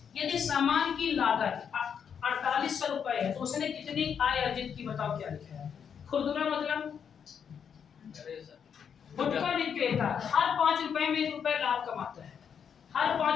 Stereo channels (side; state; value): right; quieter; 7.5 dB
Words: यदि सामान की लागत 4800 रुपए है तो उसने कितनी आय अर्जित की, बताओ क्या लिखा है। खुदरा मतलब गुटखा विक्रेता हर 5 रुपए में 1 रुपए लाभ कमाता है, हर